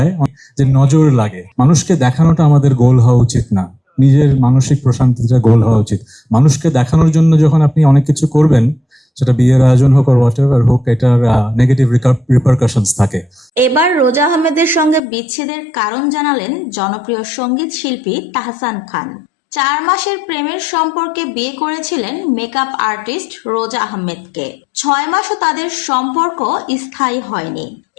যে নজর লাগে, মানুষকে দেখানোটা আমাদের গোল হওয়া উচিত না। নিজের মানসিক প্রশান্তিটা গোল হওয়া উচিত। মানুষকে দেখানোর জন্য যখন আপনি অনেক কিছু করবেন, সেটা বিয়ের আয়োজন হোক আর হোয়াট এভার হোক, এটার নেগেটিভ রিপারকাশনস থাকে। এবার রোজা আহমেদের সঙ্গে বিচ্ছেদের কারণ জানালেন জনপ্রিয় সঙ্গীত শিল্পী তাহসান খান। 4 মাসের প্রেমের সম্পর্কে বিয়ে করেছিলেন মেকআপ আর্টিস্ট রোজা আহমেদকে। 6 মাসও তাদের সম্পর্ক স্থায়ী হয়নি।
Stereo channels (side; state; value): right; drops out; at 15.0 s